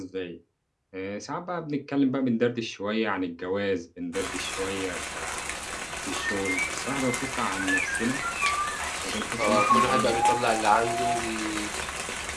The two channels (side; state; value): both; identical; correlation 1.00